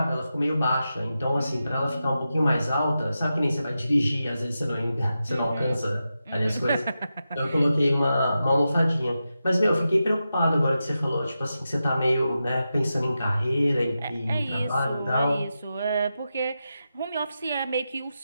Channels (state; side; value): inverted; both; correlation -0.90